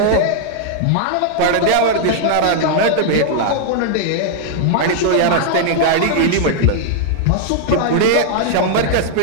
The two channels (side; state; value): both; different; correlation -0.01